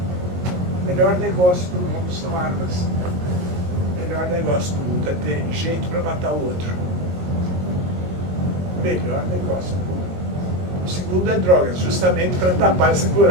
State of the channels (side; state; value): left; late; 21 ms